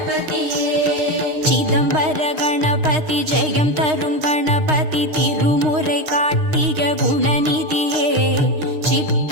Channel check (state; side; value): late; left; 6.5 ms